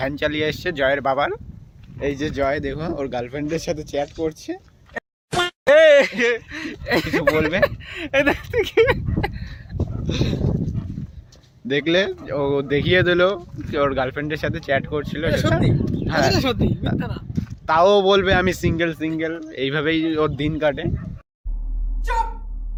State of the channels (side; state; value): both; identical; correlation 1.00